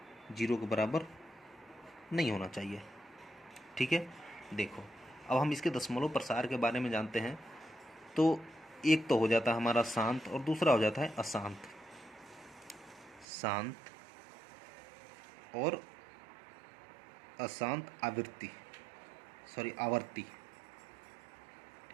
0 के बराबर नहीं होना चाहिए। ठीक है, देखो अब हम इसके दशमलव प्रसार के बारे में जानते हैं। तो एक तो हो जाता है हमारा शांत और दूसरा हो जाता है अशांत। शांत और अशांत आवर्ती।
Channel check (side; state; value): left; drops out; at 13.2 s